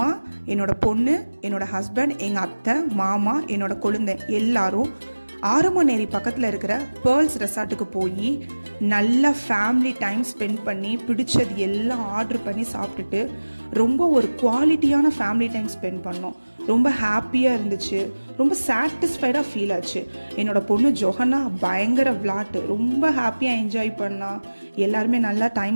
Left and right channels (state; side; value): inverted; both; correlation -1.00